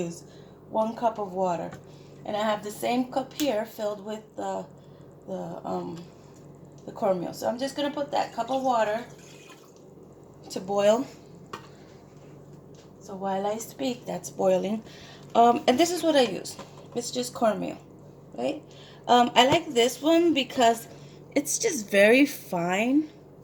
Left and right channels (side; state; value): both; identical; correlation 1.00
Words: 1 cup of water. And I have the same cup here filled with the cornmeal. So I'm just going to put that cup of water to boil. So while I speak, that's boiling. And this is what I use. It's just cornmeal, right? I like this one because it's just very fine.